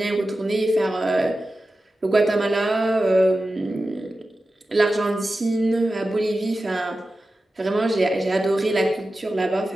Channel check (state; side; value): normal; both; correlation 0.93